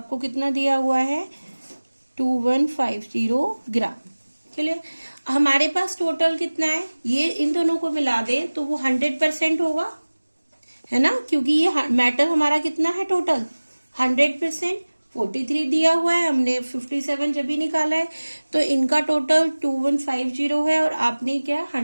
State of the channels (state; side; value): inverted; both; correlation -1.00